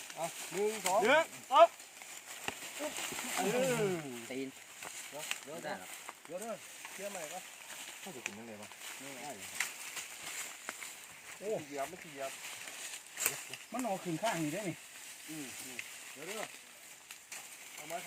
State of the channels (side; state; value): both; identical; correlation 1.00